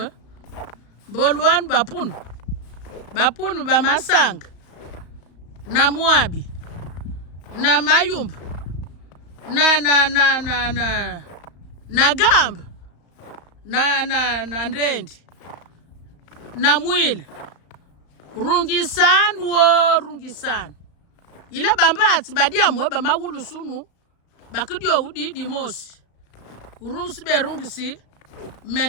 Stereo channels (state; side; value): late; right; 35 ms